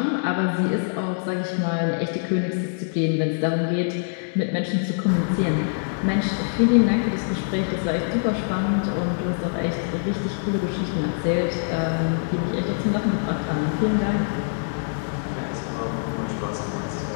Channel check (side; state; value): right; silent; digital silence